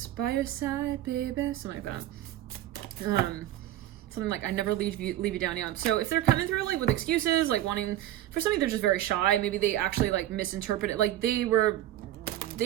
By Your Side, Baby, something like that. Something like I never leave you down. Yeah. So if they're coming through like with excuses, like wanting, for some of you they're just very shy. Maybe they actually like misinterpret it. Like they were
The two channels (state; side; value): quieter; left; 13.5 dB